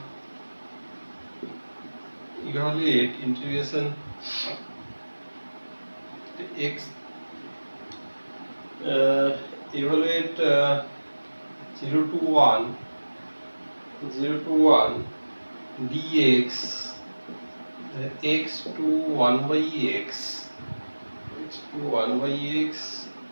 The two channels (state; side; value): inverted; both; correlation -1.00